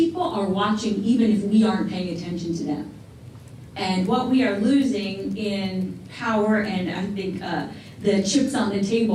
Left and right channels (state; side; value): identical; both; correlation 1.00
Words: are watching even if we aren't paying attention to them. And what we are losing in power, and I think the chips on the